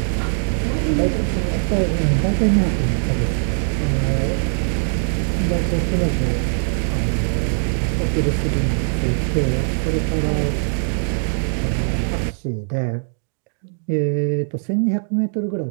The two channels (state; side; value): silent; left; digital silence